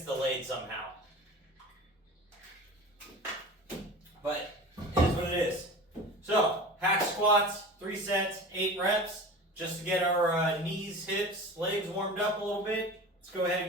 delayed somehow. But it is what it is. So, hack squats, 3 sets, 8 reps, just to get our knees, hips, legs warmed up a little bit. Let's go ahead and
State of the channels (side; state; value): both; normal; correlation 0.35